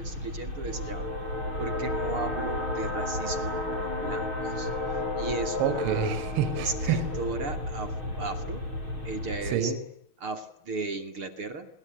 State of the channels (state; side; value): late; left; 6.7 ms